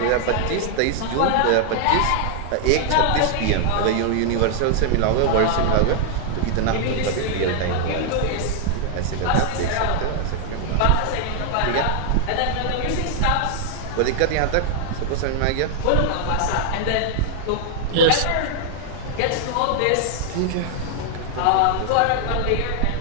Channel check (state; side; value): different; both; correlation 0.00